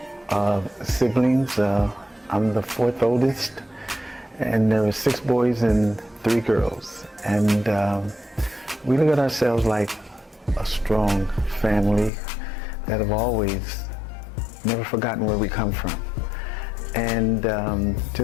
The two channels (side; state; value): right; drops out; at 12.1 s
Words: siblings. I'm the 4th oldest, and there are 6 boys and 3 girls. And we look at ourselves like a strong family that have always never forgotten where we come from. And